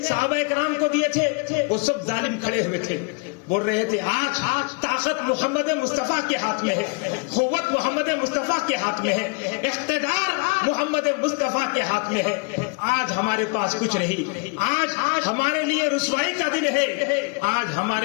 صحابہ کرام کو دیے تھے، وہ سب ظالم کھڑے ہوئے تھے، بول رہے تھے آج طاقت محمد مصطفیٰ کے ہاتھ میں ہے، قوت محمد مصطفیٰ کے ہاتھ میں ہے، اقتدار محمد مصطفیٰ کے ہاتھ میں ہے، آج ہمارے پاس کچھ نہیں، آج ہمارے لیے رسوائی کا دن ہے، آج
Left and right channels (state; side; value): quieter; right; 32.4 dB